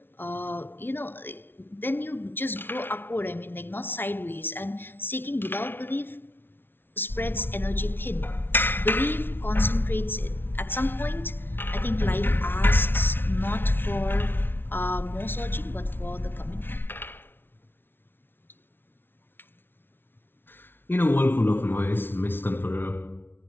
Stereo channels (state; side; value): late; right; 0.10 ms